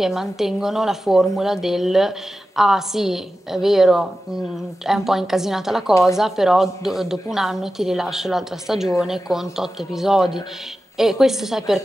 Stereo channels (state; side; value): normal; both; correlation 0.93